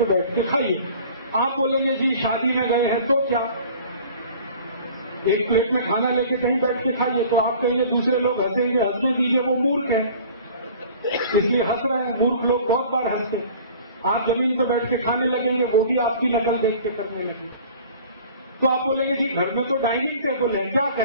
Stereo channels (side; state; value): both; inverted; correlation -0.46